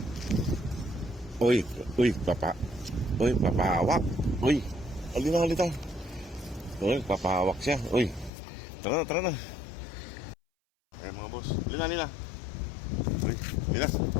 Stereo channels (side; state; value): right; drops out; at 8.3 s